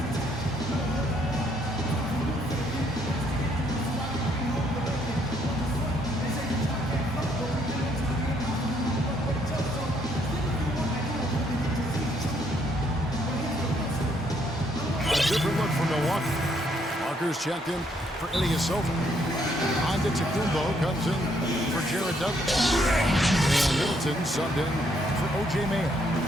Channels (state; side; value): normal; both; correlation 0.70